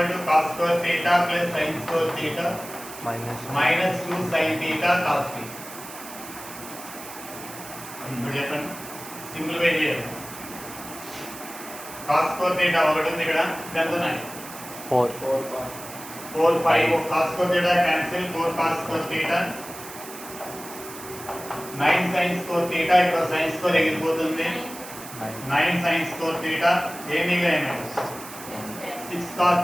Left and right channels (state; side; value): noise; right; hiss, 14 dB below the sound